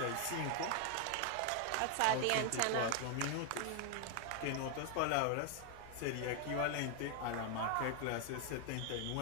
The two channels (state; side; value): different; both; correlation 0.00